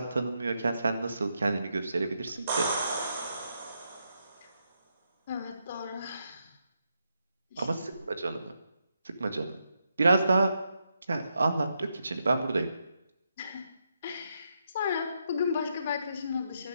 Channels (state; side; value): inverted; both; correlation -0.81